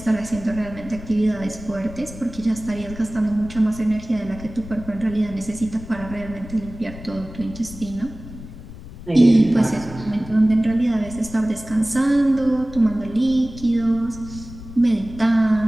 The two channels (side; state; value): left; noise; rumble, 14 dB below the sound